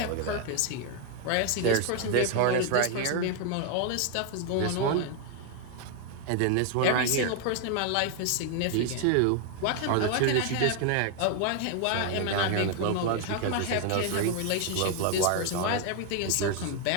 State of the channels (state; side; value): different; both; correlation 0.01